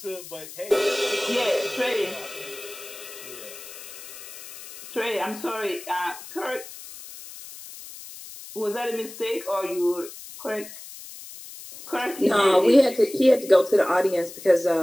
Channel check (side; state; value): left; noise; hiss, 15 dB below the sound